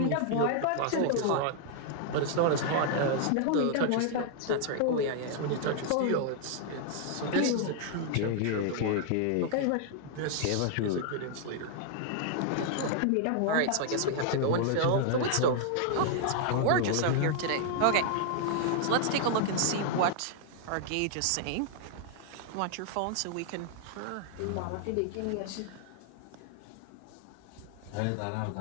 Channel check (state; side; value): different; both; correlation 0.00